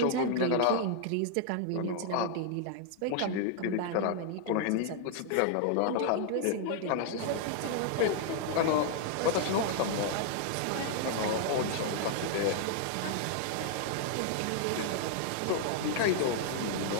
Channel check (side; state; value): both; different; correlation 0.00